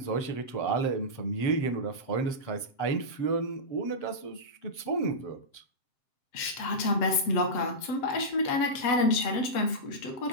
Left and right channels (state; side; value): late; right; 7.6 ms